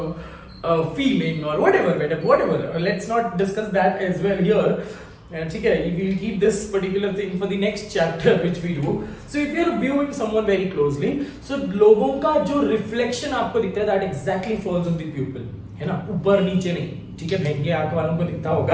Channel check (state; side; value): identical; both; correlation 1.00